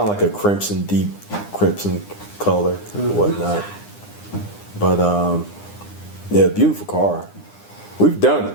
of like a deep crimson color, whatnot. But yeah, beautiful car. We've done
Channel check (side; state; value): right; late; 9.8 ms